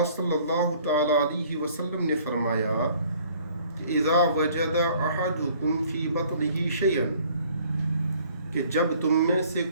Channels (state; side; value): inverted; both; correlation -0.56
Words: صلی اللہ تعالی علیہ وسلم نے فرمایا کہ اذا وجد احدکم فی بطنہ شیئا، کہ جب تم میں سے